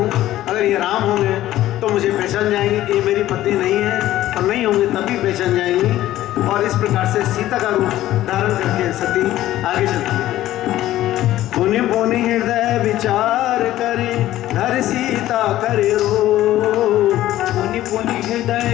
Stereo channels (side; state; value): right; quieter; 14.3 dB